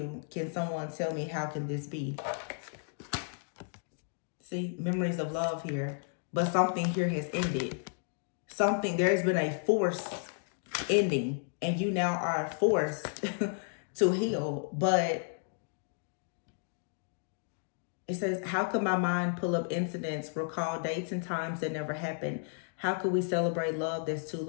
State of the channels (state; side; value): silent; right; digital silence